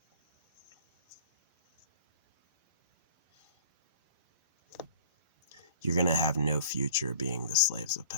You're going to have no future being the slaves of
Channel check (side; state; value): both; inverted; correlation -0.46